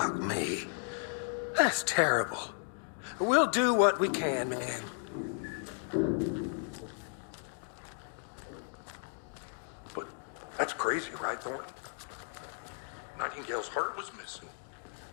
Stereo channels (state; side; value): silent; right; 55 dB below the other